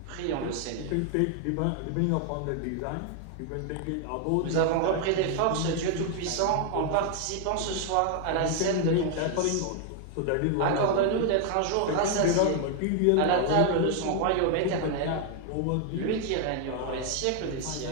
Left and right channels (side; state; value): both; different; correlation 0.00